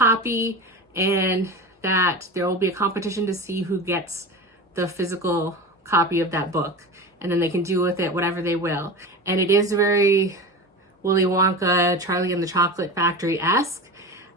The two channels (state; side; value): normal; both; correlation 0.28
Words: and that there will be a competition to see who gets the physical copy of that book, and then they can do with it whatever they will. And it is very Willy Wonka, Charlie and the Chocolate Factory-esque,